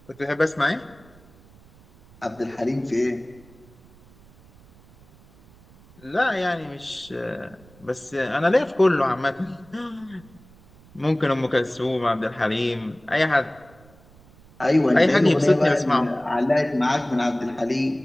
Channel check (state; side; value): noise; right; rumble, 26 dB below the sound